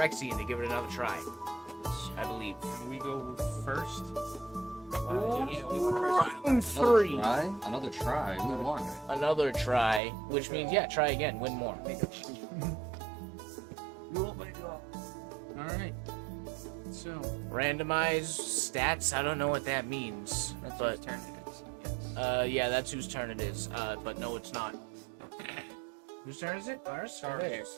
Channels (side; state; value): left; drops out; at 10.0 s